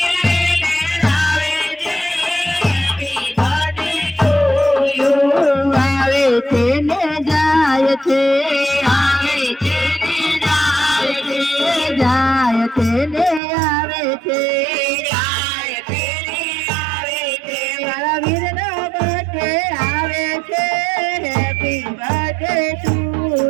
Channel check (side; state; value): left; drops out; at 13.4 s